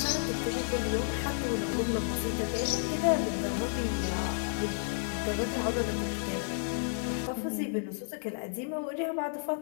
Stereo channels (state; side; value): silent; right; digital silence